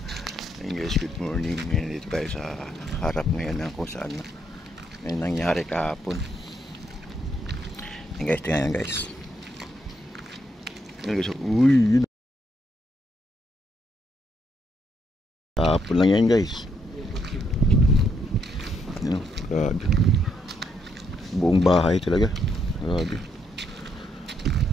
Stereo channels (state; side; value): normal; both; correlation 0.76